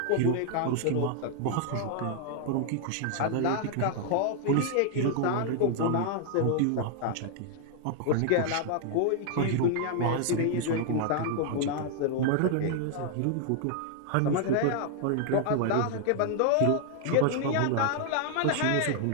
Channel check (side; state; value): both; different; correlation 0.00